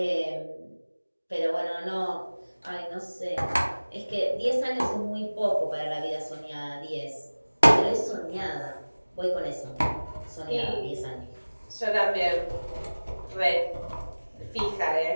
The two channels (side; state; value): both; inverted; correlation -1.00